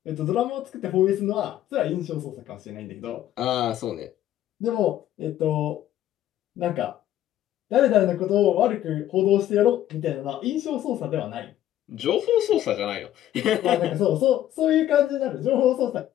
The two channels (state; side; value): quieter; right; 12.5 dB